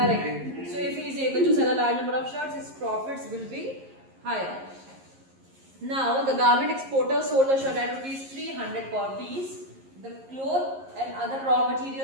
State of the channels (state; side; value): late; left; 11 ms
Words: So if he is able to sell a large number of shirts, his profits will be higher. Now the garment exporter sold the shirt at rupees 300 per piece. The cloth and other raw